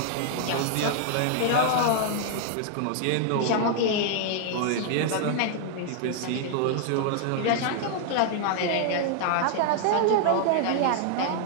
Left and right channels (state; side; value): different; both; correlation 0.00